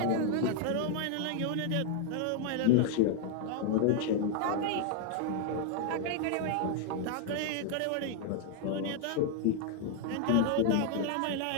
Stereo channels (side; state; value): both; different; correlation 0.00